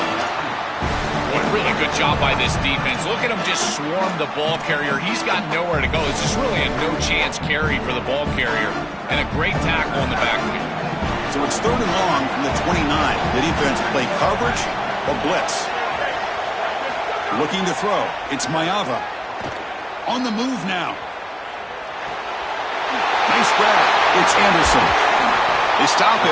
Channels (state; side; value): identical; both; correlation 1.00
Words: What a really good job by this defense. Look at him just swarm the ball carrier. He's got nowhere to go. It's just really a no-chance carry for the ball carrier, and a great tackle in the backfield. So it's 3rd and long from the 29. The defense play coverage or blitz. Looking to throw. It's Mayava. On the move now. Nice grab. It's Anderson. They stop